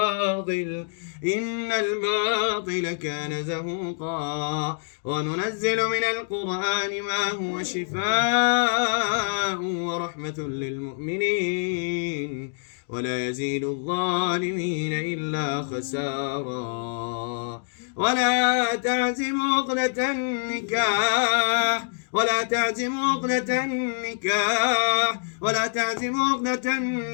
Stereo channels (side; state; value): right; silent; digital silence